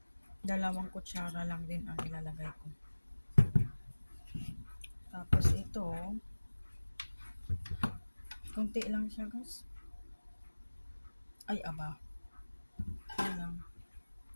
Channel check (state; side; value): inverted; both; correlation -1.00